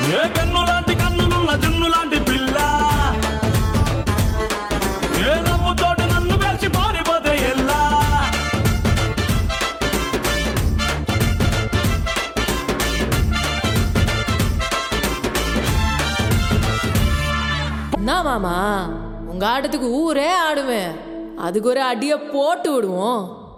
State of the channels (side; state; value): both; identical; correlation 1.00